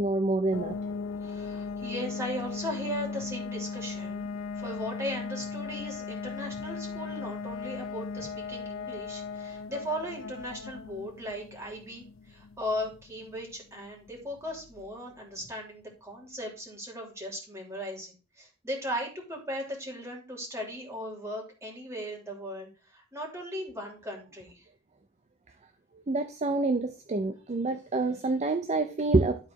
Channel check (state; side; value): normal; both; correlation 0.47